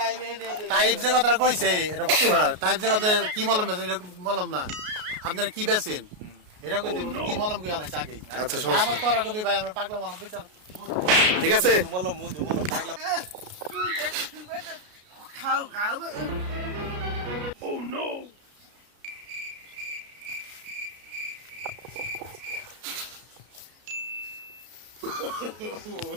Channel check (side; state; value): left; late; 33 ms